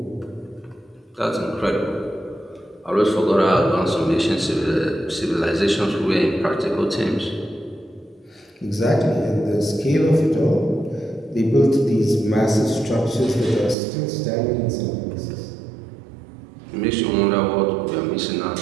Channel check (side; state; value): left; drops out; at 13.8 s